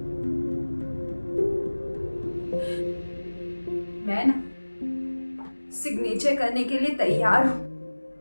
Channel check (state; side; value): inverted; both; correlation -1.00